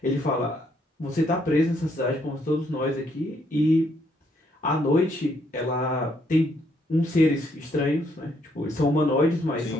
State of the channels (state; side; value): normal; both; correlation 0.71